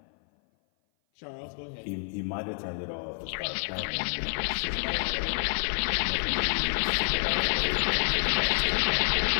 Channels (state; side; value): silent; right; 57 dB below the other